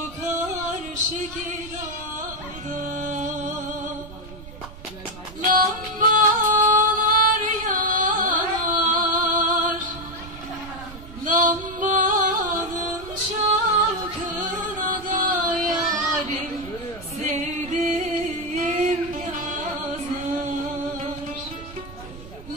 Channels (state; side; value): noise; right; rumble, 16 dB below the sound